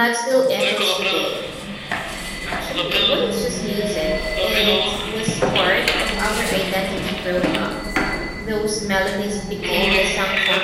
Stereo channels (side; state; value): both; identical; correlation 1.00